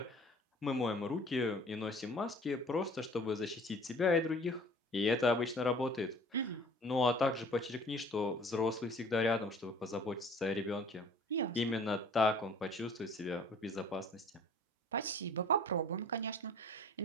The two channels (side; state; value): both; normal; correlation 0.49